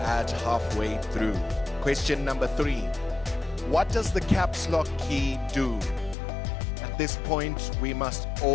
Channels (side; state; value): right; drops out; at 6.2 s